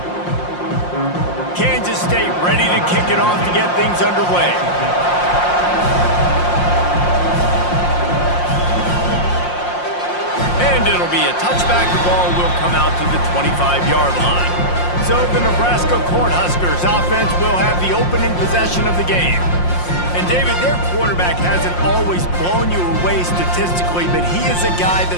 Kansas State ready to kick it off to get things underway. And it'll be a touchback. The ball will come out to the 25-yard line. So the Nebraska Cornhuskers offense will have the opening possession of the game. And David, their quarterback hasn't always blown you away statistically, but he is a guy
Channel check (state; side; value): late; right; 5.6 ms